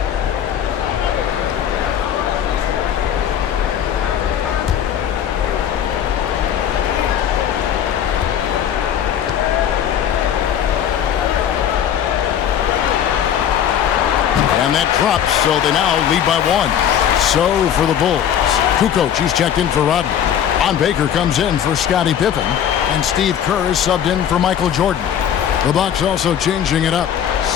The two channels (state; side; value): quieter; right; 9.4 dB